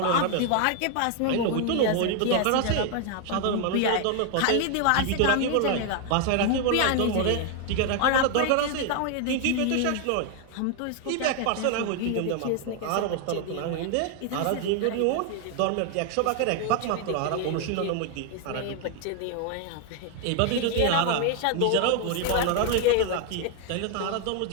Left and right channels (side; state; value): both; different; correlation 0.01